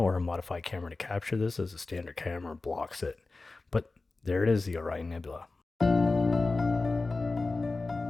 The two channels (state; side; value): quieter; right; 3.5 dB